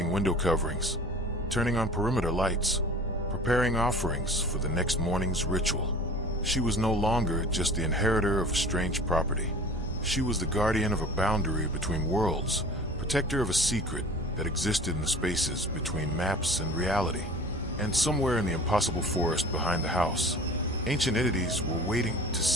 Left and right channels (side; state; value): both; normal; correlation 0.42